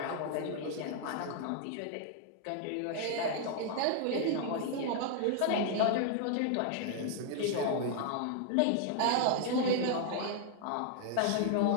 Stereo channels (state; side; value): different; both; correlation 0.00